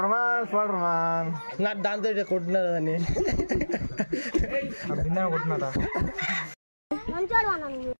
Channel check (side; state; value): both; inverted; correlation -1.00